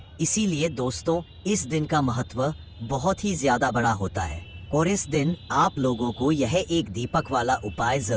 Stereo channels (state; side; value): identical; both; correlation 1.00